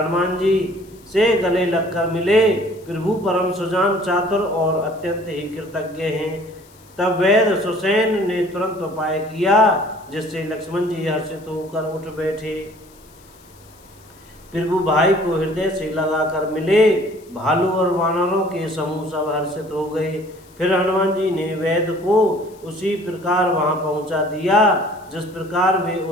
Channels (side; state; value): left; noise; hiss, 28 dB below the sound